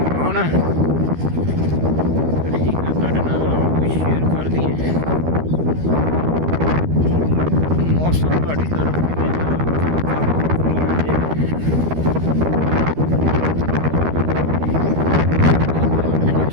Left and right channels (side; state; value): left; late; 13 ms